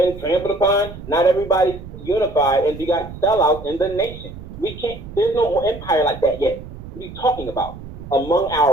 trampled upon. Not everybody's unified, and you got sellouts in the nation. We can't. There's no empire like that yet. What are you talking about? Among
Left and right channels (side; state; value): right; noise; rumble, 13 dB below the sound